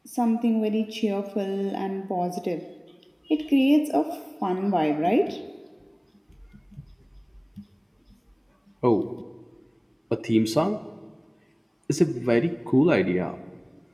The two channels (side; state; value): both; identical; correlation 1.00